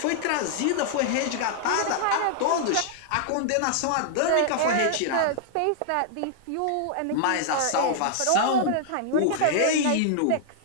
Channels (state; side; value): different; both; correlation -0.01